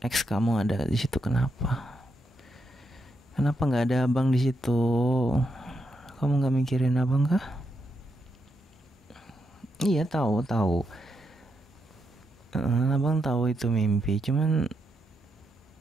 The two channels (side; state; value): both; normal; correlation 0.82